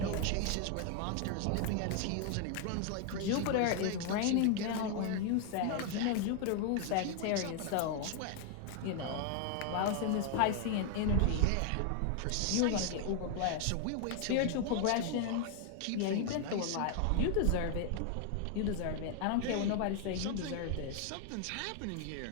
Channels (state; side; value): different; both; correlation 0.00